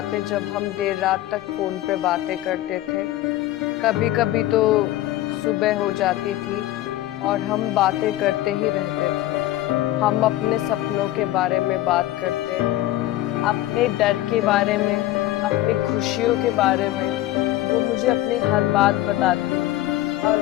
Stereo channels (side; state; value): right; quieter; 15.2 dB